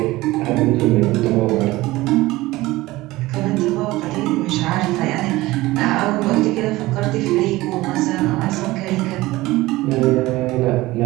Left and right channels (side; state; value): left; quieter; 18.9 dB